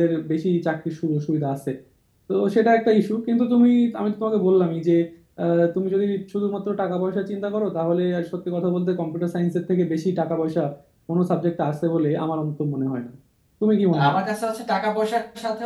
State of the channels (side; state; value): both; identical; correlation 1.00